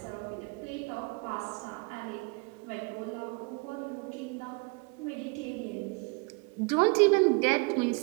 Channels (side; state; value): left; quieter; 30.7 dB